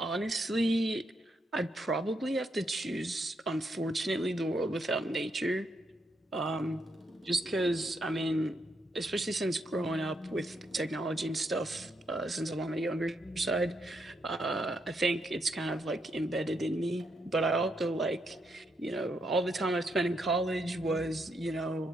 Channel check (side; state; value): both; normal; correlation 0.79